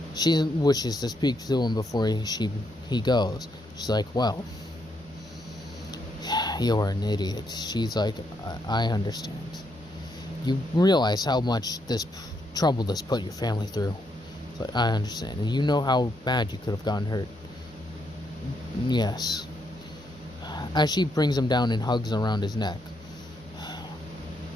she wishes to speak to him before he goes. She's like, well, you're an idiot. She's like, I understand. You realize how much trouble this put your family through. It's like, I understand. And you know how bad you could have gotten hurt. Yes. As she brings him down and hugs around his neck.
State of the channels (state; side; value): normal; both; correlation 0.77